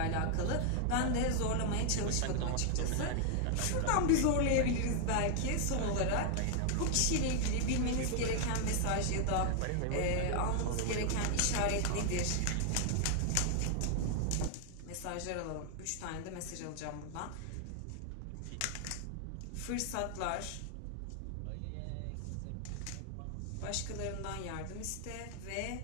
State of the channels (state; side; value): different; both; correlation 0.00